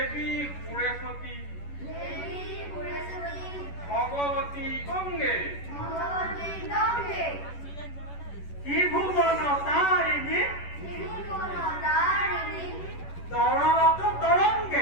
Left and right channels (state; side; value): late; right; 11 ms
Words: সুৰেশ্বতী, ভগৱতী গংগে, ত্ৰিভুৱন তাৰিণী, তৰলত